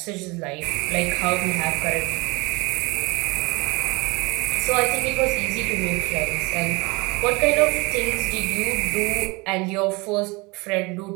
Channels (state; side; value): quieter; left; 25.8 dB